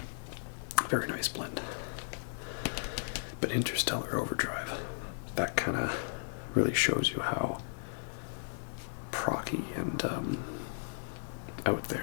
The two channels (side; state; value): right; silent; digital silence